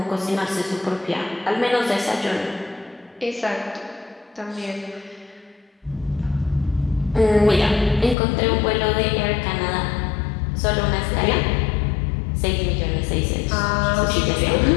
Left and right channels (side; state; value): right; drops out; at 8.2 s